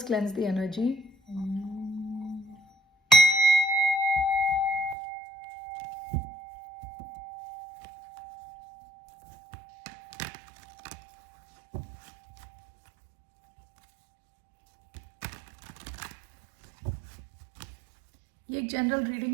cleanse the energy. ये एक जनरल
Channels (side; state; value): left; drops out; at 5.0 s